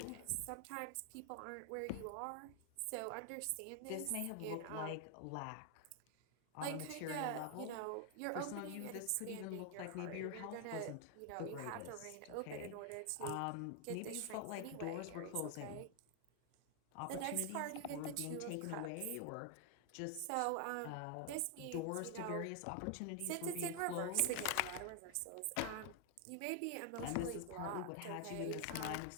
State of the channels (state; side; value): different; both; correlation 0.00